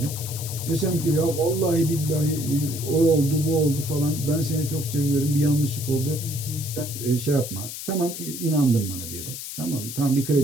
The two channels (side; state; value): left; noise; hiss, 8 dB below the sound